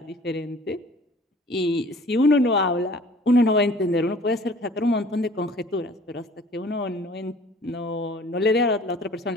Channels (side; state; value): both; normal; correlation 0.50